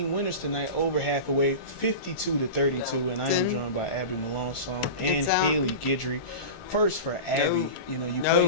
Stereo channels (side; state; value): right; late; 1.5 ms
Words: winners tonight over Hathaway, 52-32, and I am joined by Abby Melanson and Haley Guidry. First for Abby, you know, you